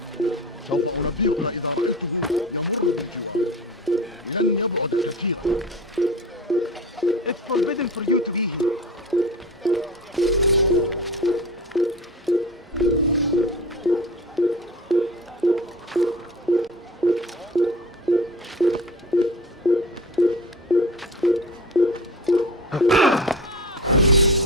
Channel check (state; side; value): normal; both; correlation 0.33